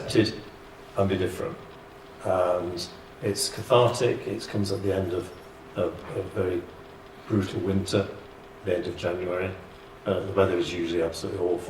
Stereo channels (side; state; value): both; identical; correlation 1.00